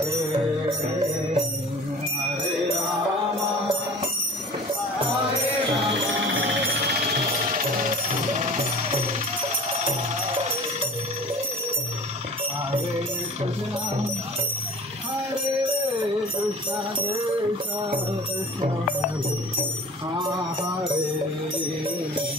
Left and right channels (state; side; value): normal; both; correlation 0.42